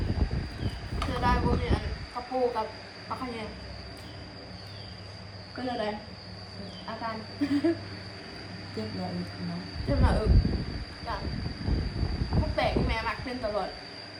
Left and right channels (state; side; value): identical; both; correlation 1.00